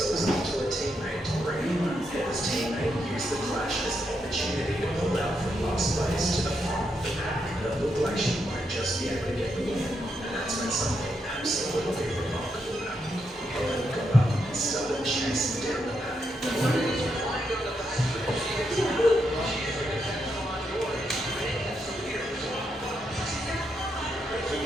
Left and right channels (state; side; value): normal; both; correlation 0.81